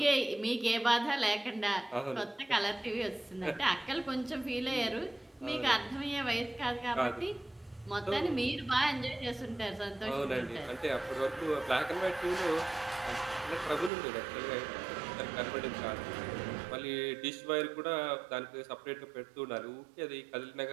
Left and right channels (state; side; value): drops out; left; at 13.9 s